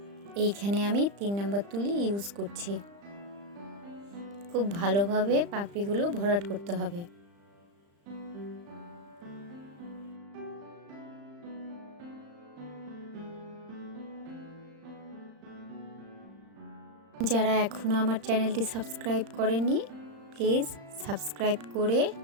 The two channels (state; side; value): late; left; 35 ms